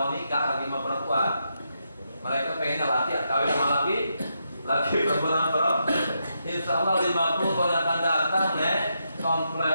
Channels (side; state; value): both; inverted; correlation -0.82